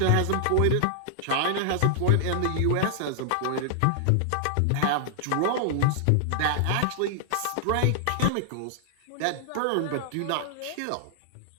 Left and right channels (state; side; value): different; both; correlation -0.01